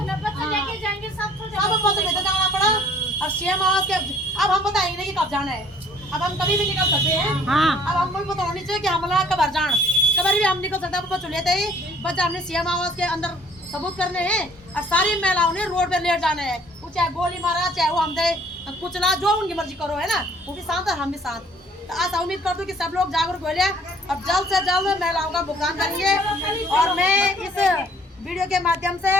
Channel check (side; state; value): both; normal; correlation 0.56